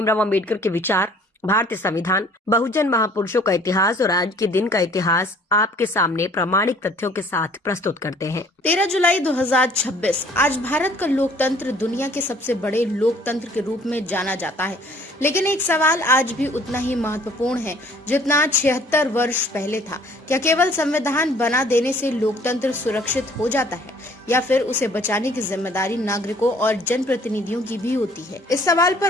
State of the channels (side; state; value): both; normal; correlation 0.56